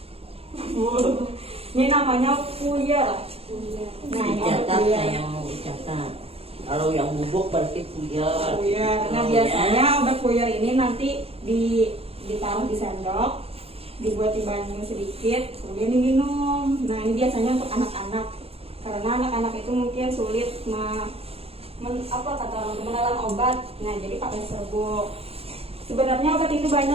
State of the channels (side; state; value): left; late; 0.29 ms